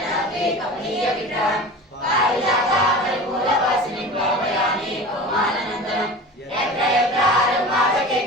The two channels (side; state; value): both; normal; correlation 0.34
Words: కమనీయ విగ్రహం పారిజాత పరిమూలవాసినిం భావయామి పవమానందనం యత్ర యత్రారం